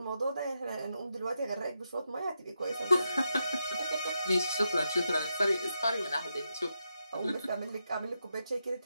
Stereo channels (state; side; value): inverted; both; correlation -0.85